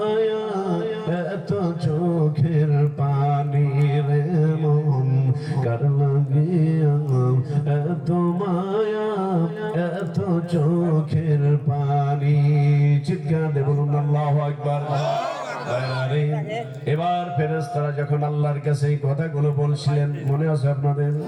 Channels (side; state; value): both; identical; correlation 1.00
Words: এত চোখের পানি রে মন, কার লাগিয়া এত মায়া, এত চোখের পানি। চিৎকার দিয়ে বলুন আল্লাহু আকবার। এবার ফেরেশতারা যখন আল্লাহর কাছে এই কথাগুলো বলছিলেন, মনে আছে আপনাদের?